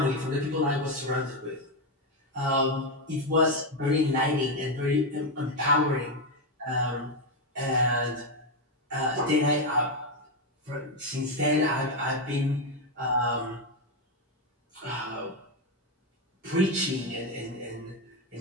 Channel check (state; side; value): normal; both; correlation 0.07